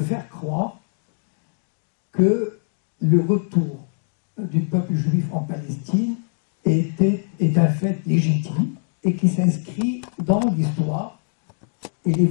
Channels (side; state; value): right; silent; 63 dB below the other